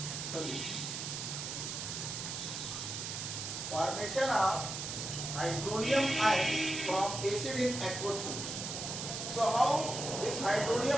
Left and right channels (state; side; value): noise; right; hiss, 5 dB below the sound